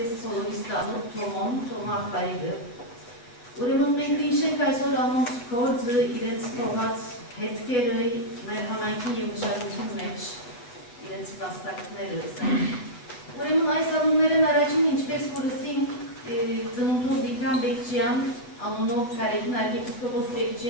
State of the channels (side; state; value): right; late; 8.3 ms